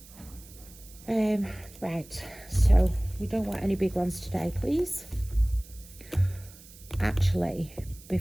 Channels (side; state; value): right; noise; hiss, 21 dB below the sound